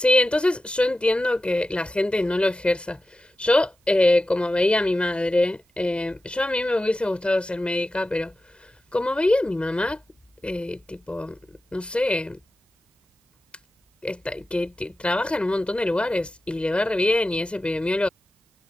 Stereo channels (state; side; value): normal; both; correlation 0.93